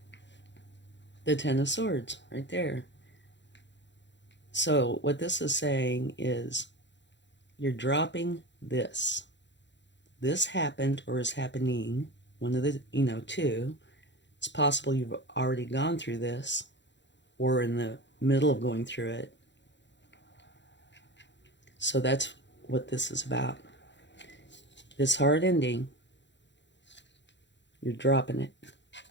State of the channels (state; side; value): late; right; 0.52 ms